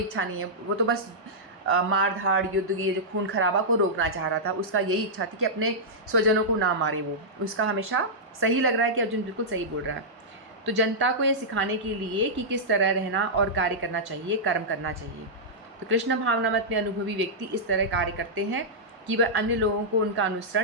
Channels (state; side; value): normal; both; correlation -0.11